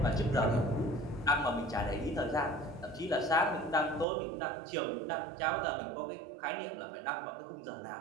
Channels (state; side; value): drops out; left; at 4.0 s